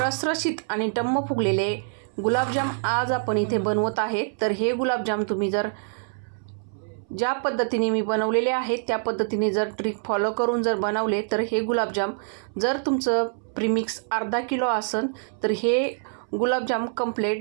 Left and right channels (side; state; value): left; silent; 61 dB below the other